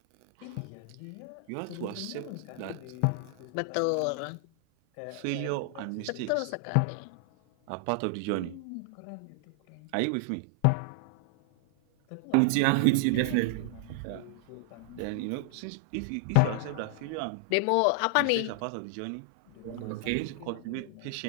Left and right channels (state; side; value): different; both; correlation -0.01